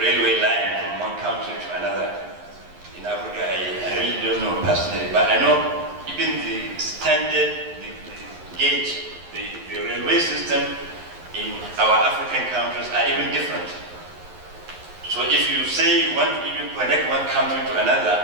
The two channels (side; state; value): left; late; 11 ms